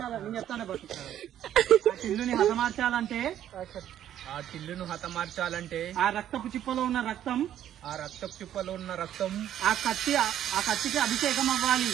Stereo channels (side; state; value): left; quieter; 11.1 dB